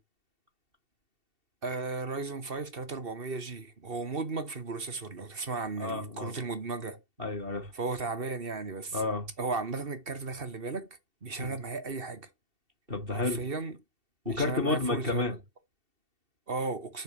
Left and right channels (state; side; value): late; left; 2.7 ms